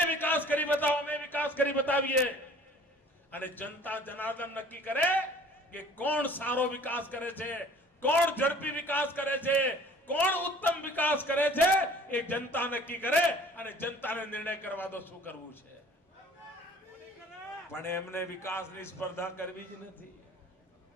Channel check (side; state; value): both; normal; correlation 0.50